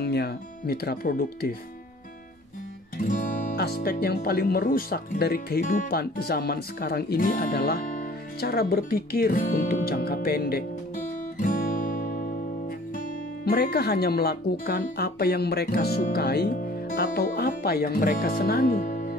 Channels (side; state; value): both; normal; correlation 0.51